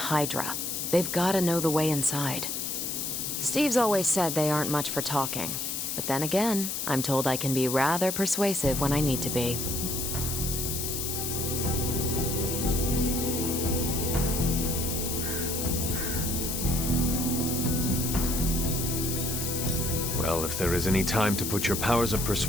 They've gotta know the way inside. Steve's always said they aren't much for talking. But then again, I'm told I can be rather persuasive when I need to be. Well, if there is any time to put your powers of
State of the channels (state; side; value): noise; left; hiss, 2 dB below the sound